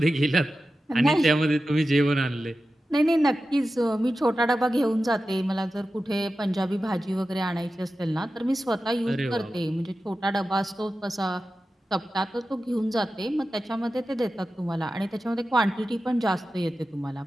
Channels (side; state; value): both; normal; correlation 0.93